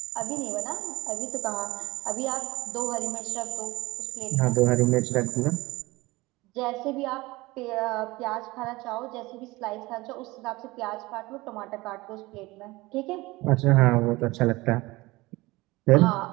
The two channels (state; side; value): quieter; left; 21.2 dB